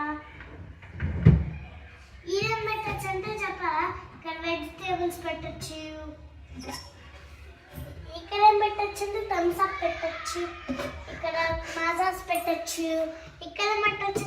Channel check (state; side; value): identical; both; correlation 1.00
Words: ఇదేం పెట్టచ్చు అంటే చెప్పాలా? ఇక్కడ వెజిటేబుల్స్ పెట్టచ్చు. ఇక్కడ ఏం పెట్టచ్చు అంటే థమ్స్ అప్ పెట్టచ్చు. ఇక్కడ మాజాస్ పెట్టచ్చు. ఇక్కడ ఏం పెట్టచ్చు